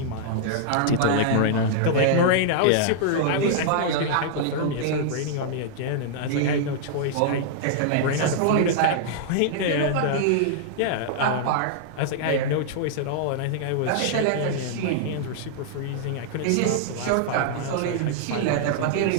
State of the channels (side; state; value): both; different; correlation -0.01